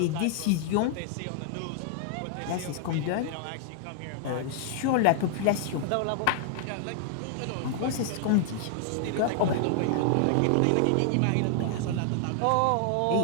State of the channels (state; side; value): different; both; correlation 0.00